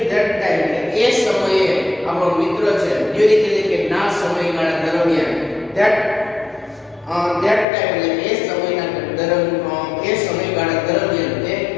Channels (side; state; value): right; drops out; at 7.7 s